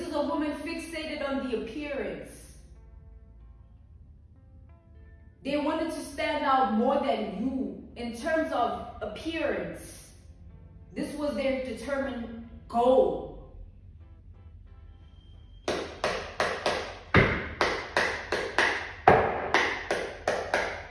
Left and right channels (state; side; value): identical; both; correlation 1.00